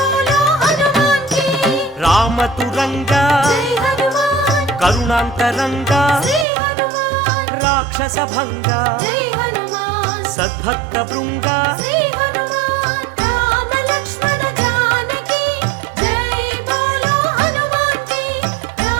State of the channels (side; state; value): left; drops out; at 6.5 s